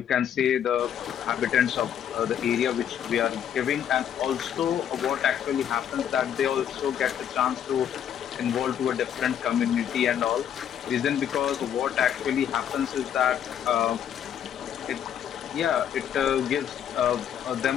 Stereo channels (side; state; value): right; quieter; 9.4 dB